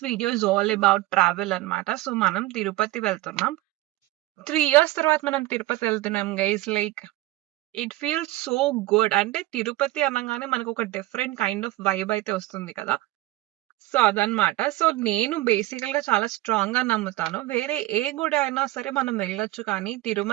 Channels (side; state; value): left; quieter; 17.9 dB